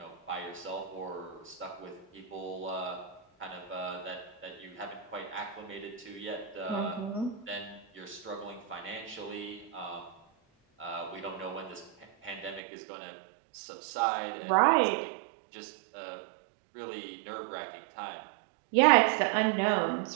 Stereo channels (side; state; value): left; drops out; at 12.6 s